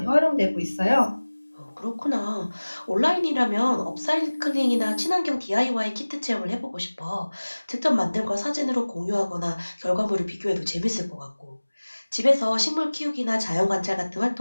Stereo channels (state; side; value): inverted; both; correlation -1.00